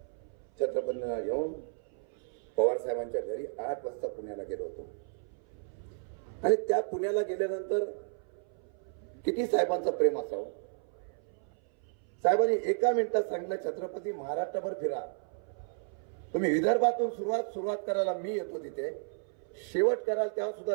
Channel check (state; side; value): silent; left; 56 dB below the other